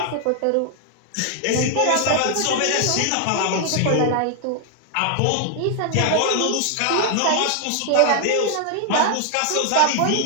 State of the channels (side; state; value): both; different; correlation 0.00